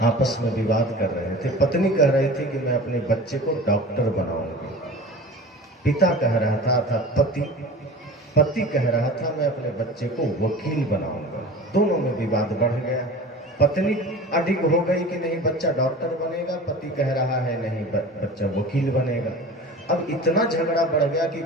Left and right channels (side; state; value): both; normal; correlation 0.38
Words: आपस में विवाद कर रहे थे। पत्नी कह रही थी कि मैं अपने बच्चे को डॉक्टर बनाऊंगी। पिता कह रहा था अर्थात पति कह रहा था मैं अपने बच्चे को वकील बनाऊंगा। दोनों में विवाद बढ़ गया। पत्नी अडिग हो गई कि नहीं बच्चा डॉक्टर बनेगा, पति कह रहा है नहीं बच्चा वकील बनेगा। अब इतना झगड़ा बढ़ गया कि